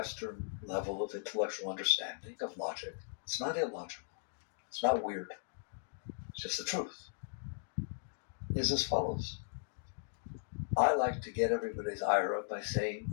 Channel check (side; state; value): right; silent; digital silence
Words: level of intellectual understanding, of logic, it's not illogical, it's not weird, it's just the truth, is as follows. I like to get everybody's ire up by saying